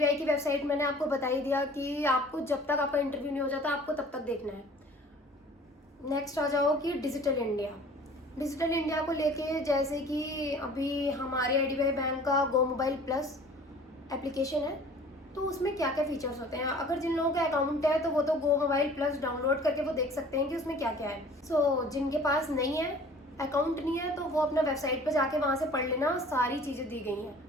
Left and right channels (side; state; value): both; normal; correlation 0.48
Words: की वेबसाइट मैंने आपको बता ही दिया कि आपको जब तक आपका इंटरव्यू नहीं हो जाता आपको तब तक देखना है। नेक्स्ट आ जाओ कि डिजिटल इंडिया। डिजिटल इंडिया को लेके जैसे कि अभी हमारे आईडीबीआई बैंक का गो मोबाइल प्लस एप्लीकेशन है, तो उसमें क्या क्या फीचर्स होते हैं। अगर जिन लोगों का अकाउंट है तो वो तो गो मोबाइल प्लस डाउनलोड करके वो देख सकते हैं कि उसमें क्या क्या है। जिनके पास नहीं है, अकाउंट नहीं है, तो वो अपना वेबसाइट पर जाके वहाँ से पढ़ लेना, सारी चीज़ें दी गई हैं।